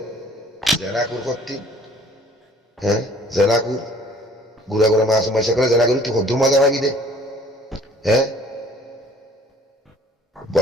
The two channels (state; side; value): normal; both; correlation 0.54